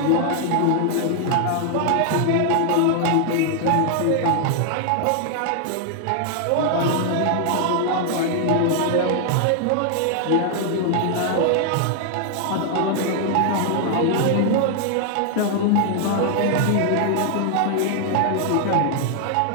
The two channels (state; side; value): different; both; correlation 0.00